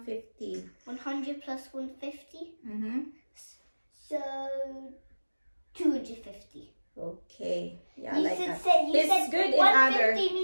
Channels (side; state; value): both; inverted; correlation -1.00